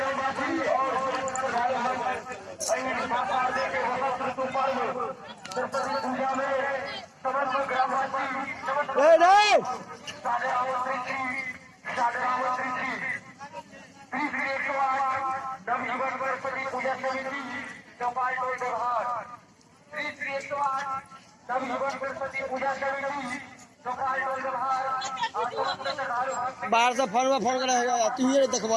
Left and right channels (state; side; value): identical; both; correlation 1.00